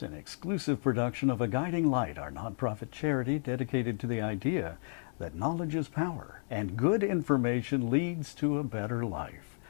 an exclusive production of A Guiding Light, our nonprofit charity dedicated to the idea that knowledge is power and good information leads to a better life.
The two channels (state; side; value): silent; right; digital silence